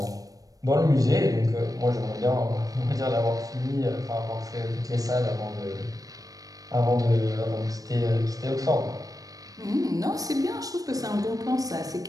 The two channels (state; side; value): late; left; 0.17 ms